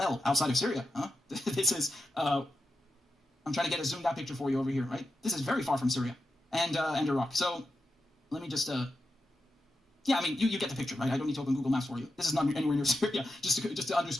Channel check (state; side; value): normal; both; correlation 0.88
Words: outside of Syria. Huh? This is, I'm trying to get a zoomed out picture for you over here, right? This is very far from Syria and Iraq. So let me just Yeah, I mean, you get the picture, right? I don't need to open Google Maps for you. This is not anywhere near Syria, just to